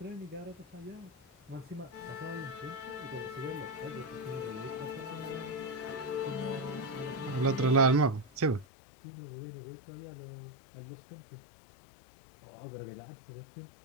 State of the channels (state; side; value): drops out; right; at 8.7 s